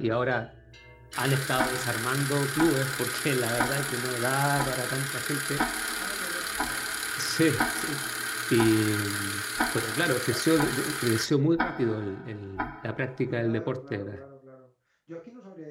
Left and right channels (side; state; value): both; identical; correlation 1.00